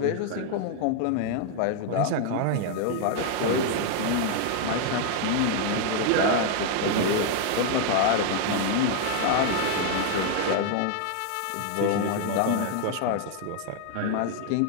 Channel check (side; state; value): both; different; correlation 0.00